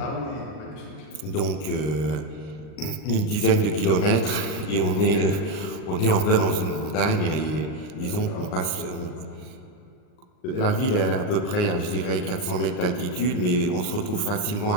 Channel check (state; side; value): late; right; 39 ms